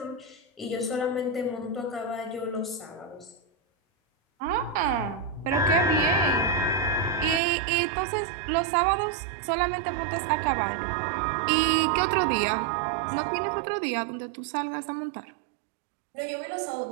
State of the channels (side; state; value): left; drops out; at 7.4 s